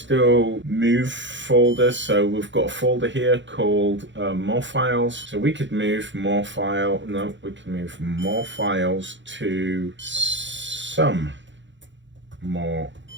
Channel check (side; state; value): left; late; 0.54 ms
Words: move folders. So we've got a folder here called more files. So we could move more files to some more